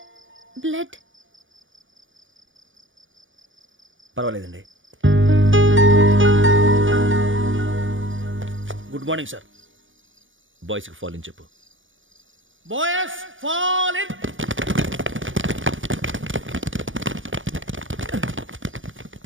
బ్లడ్. పర్వాలేదండి. Good morning sir. బాయ్స్కి ఫాల్ ఇన్ చెప్పు. Boys fall in.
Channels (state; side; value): late; left; 0.57 ms